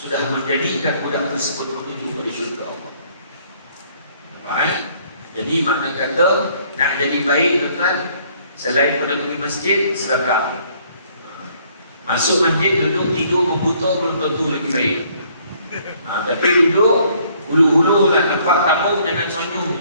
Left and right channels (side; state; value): both; inverted; correlation -0.63